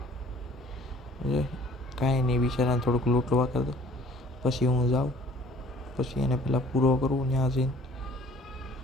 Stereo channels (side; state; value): both; normal; correlation 0.54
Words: કાંઈ નહીં, બિચારાને થોડુંક લૂંટવા કરી દો પછી હું જાઉં. પછી એને પહેલાં પૂરો કરું ત્યાં જઈને,